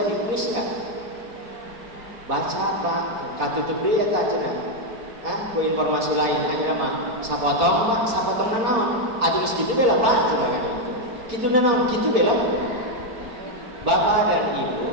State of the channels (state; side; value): late; left; 4.4 ms